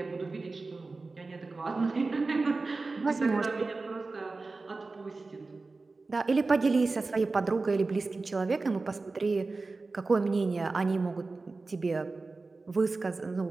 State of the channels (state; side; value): quieter; left; 3.7 dB